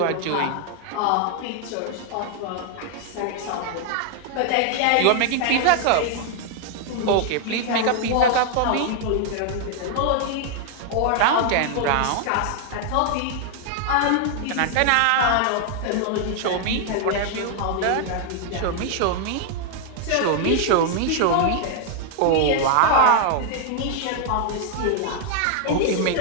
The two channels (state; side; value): different; both; correlation 0.00